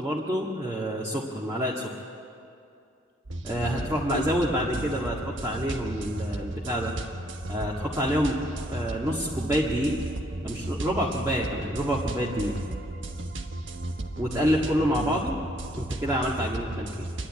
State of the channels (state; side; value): normal; both; correlation 0.67